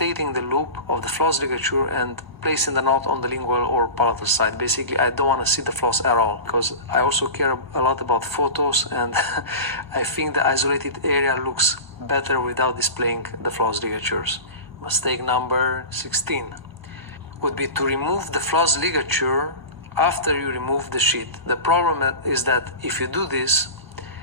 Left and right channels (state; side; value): late; left; 1.0 ms